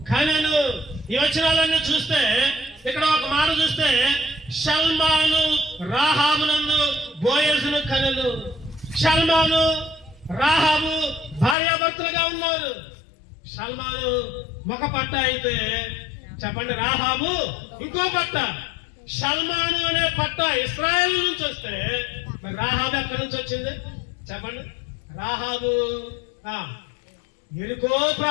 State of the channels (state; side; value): drops out; right; at 11.6 s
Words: కనెను. ఈ వచనాలన్నీ చూస్తే ఇక్కడ ఒక మాట చూస్తే సల్మాను రాహాబునందు బోయజును కనెను. సల్మాను రాహాబు భార్యాభర్తలుగా ఉన్నారు. సల్మాను ఒక పట్ట అయితే చెప్పండి, రాహాబు ఇంకో పట్ట. సల్మాను అనే పట్ట ఇశ్రాయేలు నుంచి వస్తే మరి రాహాబు ఎక్కడి నుంచి వచ్చింది చెప్పండి? రాహాబు ఎరుకో